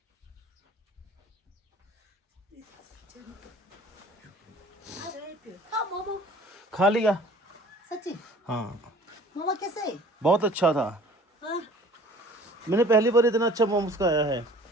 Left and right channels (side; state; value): both; normal; correlation 0.50